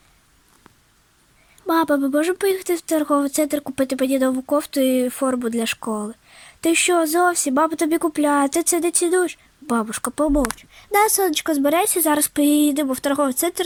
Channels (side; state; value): both; identical; correlation 1.00